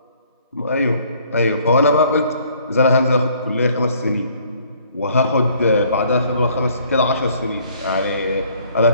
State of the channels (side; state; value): both; inverted; correlation -0.61